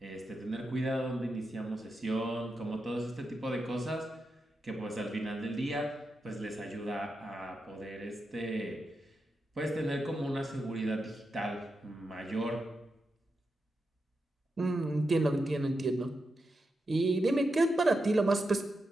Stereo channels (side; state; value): both; normal; correlation 0.88